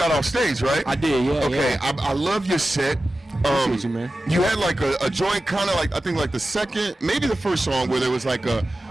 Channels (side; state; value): both; normal; correlation 0.94